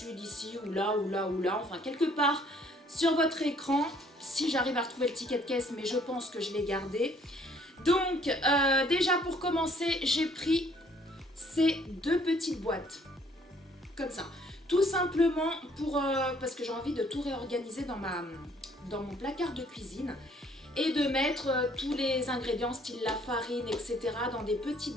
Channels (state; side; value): normal; both; correlation 0.61